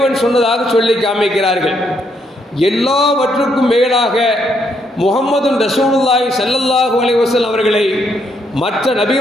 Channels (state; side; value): normal; both; correlation 0.74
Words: சொன்னதாக சொல்லி காமிக்கிறார்கள். எல்லாவற்றுக்கும் மேலாக முஹம்மது ரசூலுல்லாஹி ஸல்லல்லாஹு அலைஹி வஸல்லம் அவர்களை மற்ற